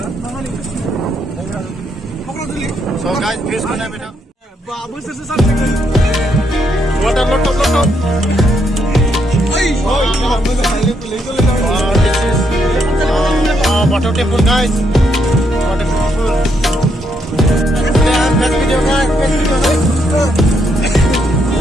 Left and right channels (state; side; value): normal; both; correlation 0.76